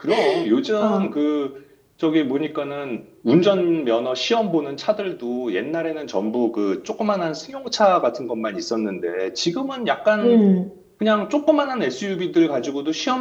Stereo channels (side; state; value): both; identical; correlation 1.00